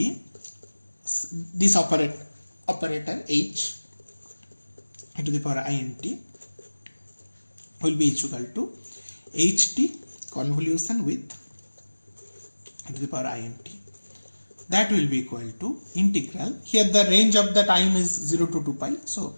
this operator h to the power int will be equal to ht convolution with to the power int. That will be equal to integral. Here the range of the time is 0 to 2 pi. So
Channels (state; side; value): inverted; both; correlation -1.00